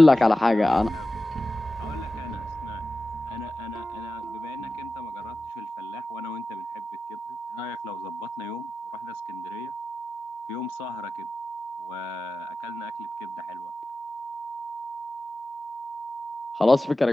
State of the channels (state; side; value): normal; both; correlation 0.94